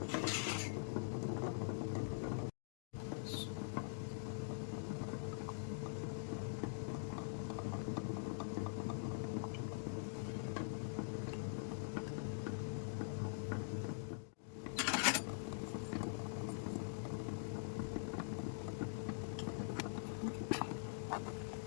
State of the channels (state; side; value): silent; right; digital silence